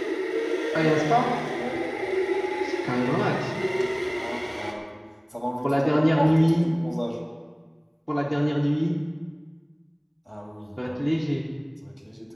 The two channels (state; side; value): identical; both; correlation 1.00